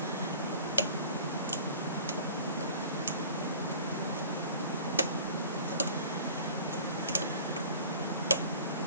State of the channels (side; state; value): both; inverted; correlation -0.45